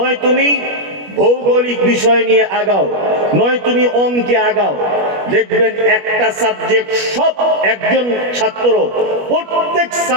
তুমি ভৌগোলিক বিষয় নিয়ে আগাও, নয় তুমি অঙ্কে আগাও। দেখবেন একটা সাবজেক্ট সব একজন ছাত্র প্রত্যেক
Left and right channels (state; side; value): late; left; 21 ms